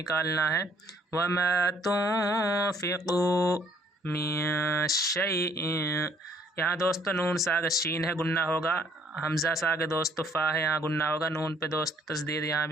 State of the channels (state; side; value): normal; both; correlation 0.62